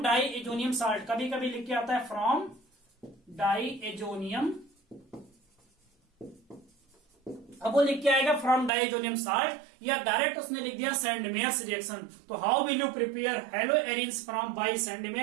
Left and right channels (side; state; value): left; drops out; at 8.7 s